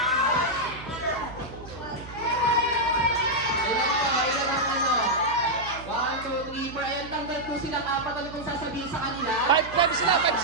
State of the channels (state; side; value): noise; right; hum, 15 dB below the sound